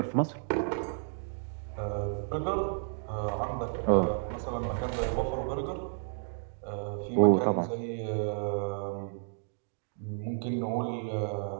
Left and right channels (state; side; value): silent; left; digital silence